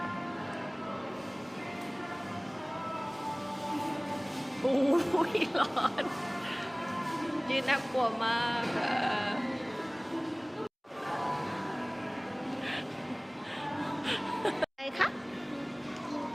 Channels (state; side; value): identical; both; correlation 1.00